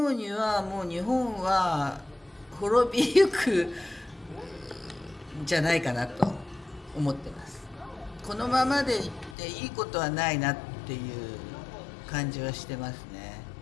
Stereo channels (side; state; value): right; drops out; at 9.3 s